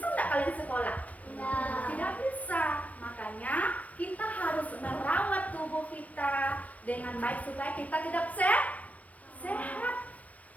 nggak kalian sekolah? Tidak bisa. Makanya kita harus merawat tubuh kita dengan baik supaya kita tidak sehat,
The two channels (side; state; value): right; late; 0.068 ms